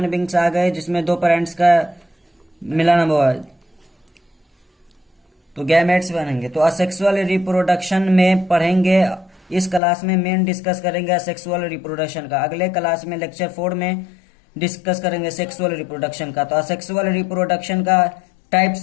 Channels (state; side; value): drops out; right; at 9.8 s